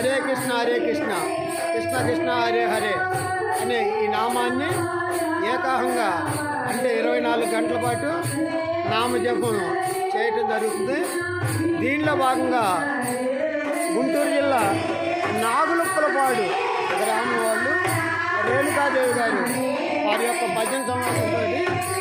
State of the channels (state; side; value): identical; both; correlation 1.00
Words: కృష్ణ కృష్ణ కృష్ణ హరే హరే అనే ఈ నామాన్ని ఏకాహంగా అంటే 24 గంటల పాటు నామజపం చేయటం జరుగుతుంది. దీనిలో భాగంగా గుంటూరు జిల్లా నాగులుప్పలపాడు గ్రామం వాళ్ళు రేణుకాదేవి గారు వారి యొక్క భజన సమావేశంతో